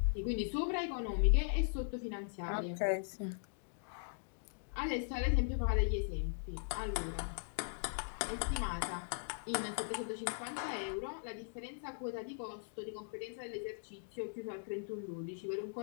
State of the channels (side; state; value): right; silent; digital silence